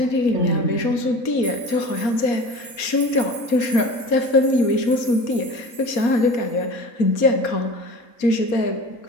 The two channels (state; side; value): late; right; 4.2 ms